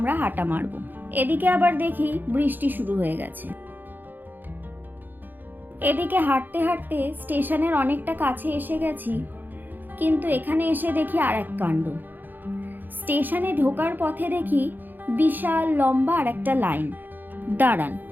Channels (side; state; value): left; late; 0.089 ms